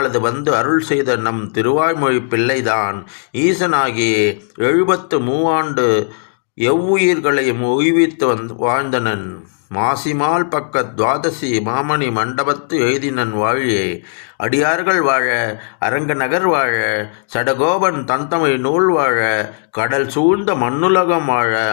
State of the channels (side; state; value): right; silent; digital silence